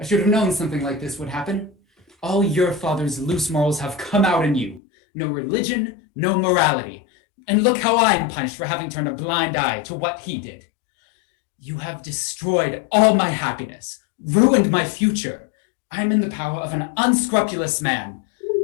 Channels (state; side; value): drops out; right; at 4.8 s